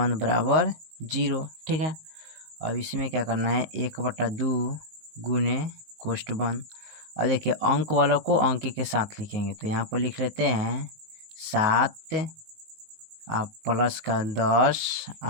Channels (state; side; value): late; left; 19 ms